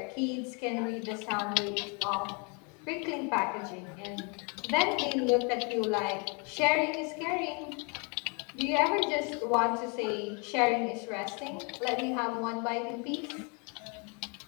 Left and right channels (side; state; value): right; quieter; 34.2 dB